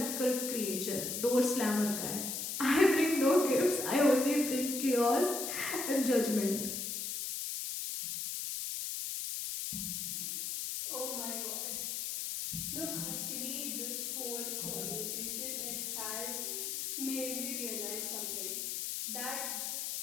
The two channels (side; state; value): left; noise; hiss, 3 dB below the sound